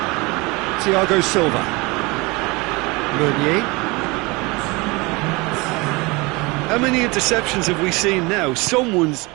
Thiago Silva. Meunier. How many interceptions have we seen now? Someone's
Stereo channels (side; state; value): left; quieter; 25.1 dB